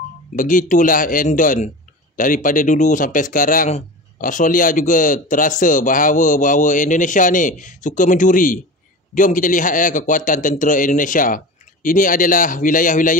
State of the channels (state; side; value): normal; both; correlation 0.31